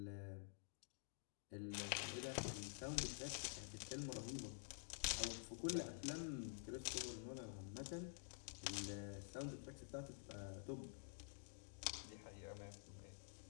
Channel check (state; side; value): silent; right; digital silence